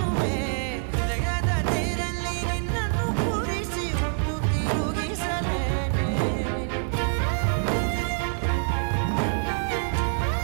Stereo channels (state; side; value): silent; left; 61 dB below the other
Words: ಹೃದಯದ ತೇರಲ್ಲಿ ನಿನ್ನನ್ನು ಕೂರಿಸಿ ಹೊತ್ತು ತಿರುಗಿಸಲೇನೆ